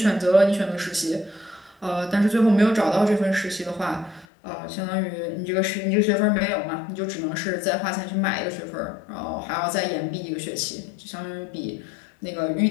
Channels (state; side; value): drops out; right; at 4.2 s